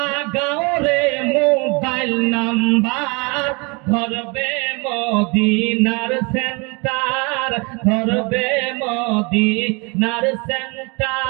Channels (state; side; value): quieter; left; 29.5 dB